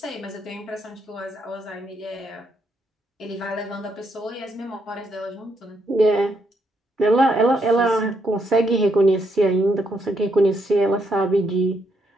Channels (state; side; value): normal; both; correlation 0.76